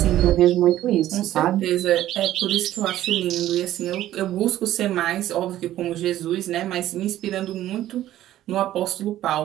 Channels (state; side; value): quieter; left; 13.4 dB